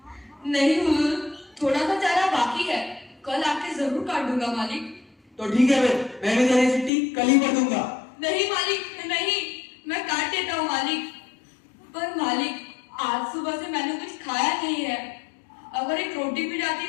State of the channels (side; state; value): right; drops out; at 6.9 s